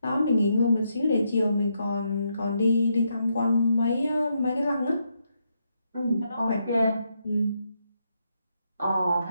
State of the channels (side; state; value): both; inverted; correlation -0.79